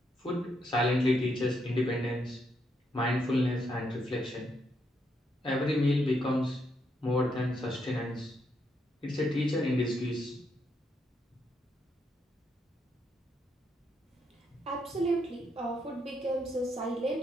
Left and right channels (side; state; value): both; normal; correlation 0.78